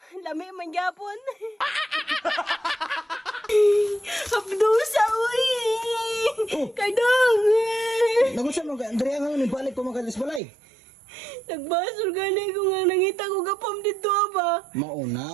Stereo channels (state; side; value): drops out; left; at 10.4 s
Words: Lami man gyapon. Hapdusa uy. Cardong. Nagusa mo diri nga ni balik ko makalis balay. Nagbasol gani ko nga nangita ko gapam dito ba.